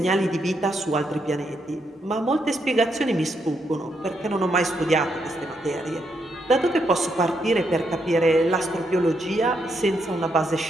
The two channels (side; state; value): both; normal; correlation 0.78